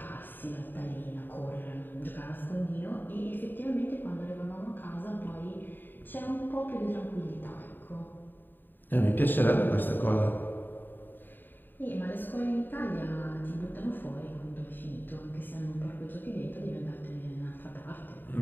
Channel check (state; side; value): late; right; 0.092 ms